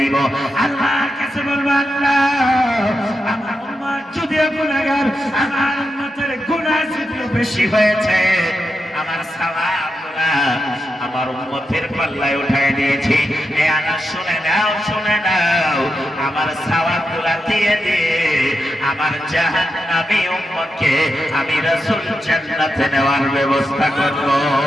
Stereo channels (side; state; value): both; normal; correlation 0.87